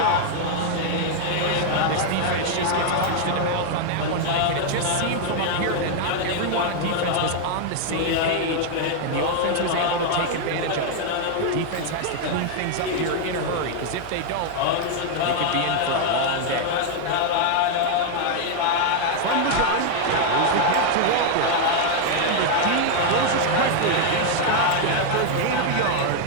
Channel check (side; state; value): both; different; correlation 0.00